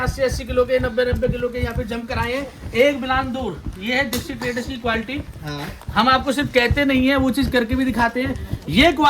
किलो के, 90-90 किलो के यहाँ पे जंप कराए हैं 1 बिलान दूर। ये है दीक्षित ट्रेडर्स की क्वालिटी। हाँ, हम आपको सिर्फ कहते नहीं है, वो चीज करके भी दिखाते हैं। ये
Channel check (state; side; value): identical; both; correlation 1.00